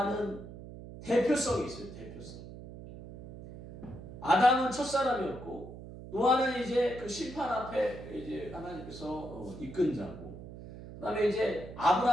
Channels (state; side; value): noise; right; hum, 13 dB below the sound